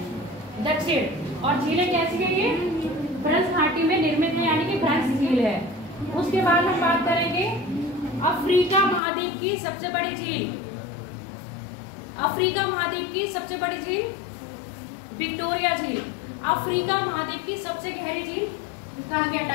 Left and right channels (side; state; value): right; drops out; at 9.0 s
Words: दक्षिण। और झीलें कैसी है ये भ्रंश घाटी में निर्मित है, यानी कि भ्रंश झील है। उसके बाद हम बात करेंगे अफ्रीका महाद्वीप की सबसे बड़ी झील। अफ्रीका महाद्वीप की सबसे बड़ी झील विक्टोरिया झील। अफ्रीका महाद्वीप की सबसे गहरी झील कहाँ गया?